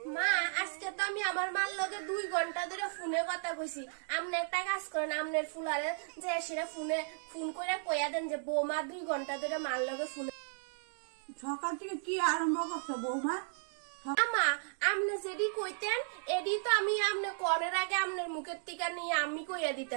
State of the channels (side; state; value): left; silent; digital silence